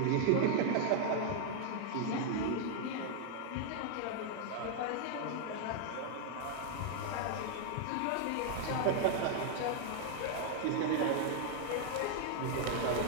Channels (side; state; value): both; different; correlation 0.00